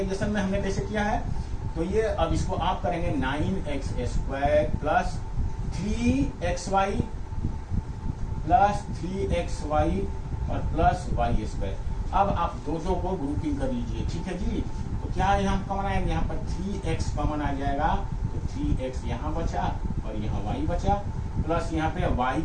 में हमने कैसे किया है। तो ये अब इसको आप करेंगे 9x square plus 3xy plus 3xy और प्लस y स्क्वायर। अब आप दो को ग्रुपिंग कर लीजिए, ठीक है जी। तो क्या यहाँ कॉमन आएगा, यहाँ पर 3x कॉमन आ जाएगा, तो 3x यहाँ बचा और यहाँ y बचा, प्लस यहाँ पे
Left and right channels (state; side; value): identical; both; correlation 1.00